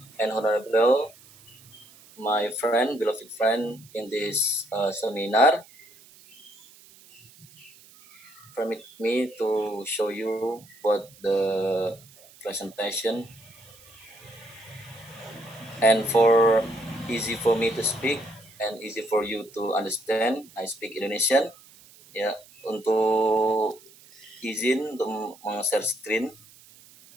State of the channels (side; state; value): right; noise; hiss, 24 dB below the sound